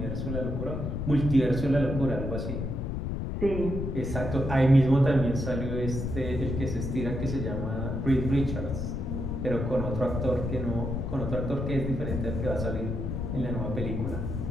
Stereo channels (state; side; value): noise; left; rumble, 3 dB below the sound